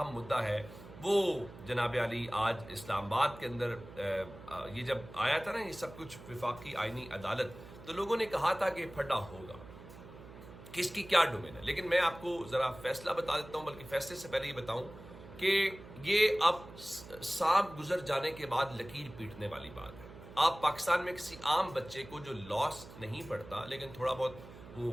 مدعا ہے وہ جناب علی آج اسلام آباد کے اندر یہ جب آیا تھا نا یہ سب کچھ وفاقی آئینی عدالت، تو لوگوں نے کہا تھا کہ پھڈا ہوگا کہ اس کی کیا ڈومین ہے، لیکن میں آپ کو ذرا فیصلہ بتا دیتا ہوں، بلکہ فیصلے سے پہلے یہ بتاؤں کہ یہ اب سانپ گزر جانے کے بعد لکیر پیٹنے والی بات ہے۔ آپ پاکستان میں کسی عام بچے کو جو لاس نہیں پڑھتا لیکن تھوڑا بہت وہ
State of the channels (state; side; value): noise; right; hum, 17 dB below the sound